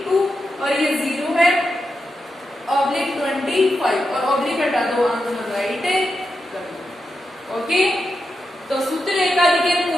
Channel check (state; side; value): normal; both; correlation 0.87